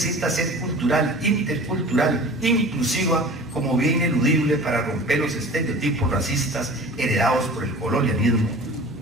ser cultural, intercultural, inclusiva, como bien ineludible para romper los estereotipos racistas heredados por el colonialismo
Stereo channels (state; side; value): normal; both; correlation 0.40